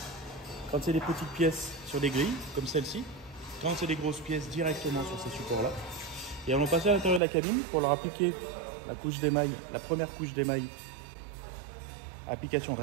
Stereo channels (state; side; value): drops out; left; at 7.2 s